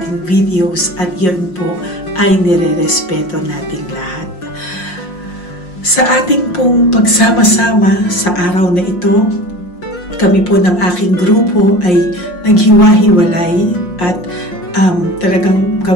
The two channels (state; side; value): late; right; 5.6 ms